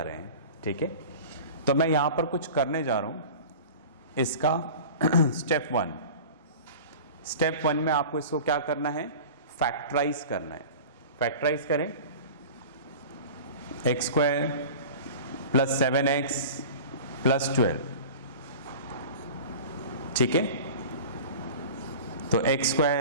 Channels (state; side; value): inverted; both; correlation -0.37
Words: रहे हैं। ठीक है, तो मैं यहां पर कुछ करने जा रहा हूं। इसका स्टेप 1 में आपको इसको क्या करना है, फैक्टराइज करना है। फैक्टराइज करें, x² + 7x + 12। ठीक है, तो x²,